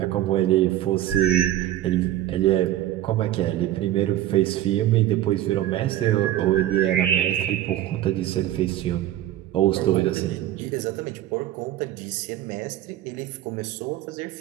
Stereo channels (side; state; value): left; quieter; 13.4 dB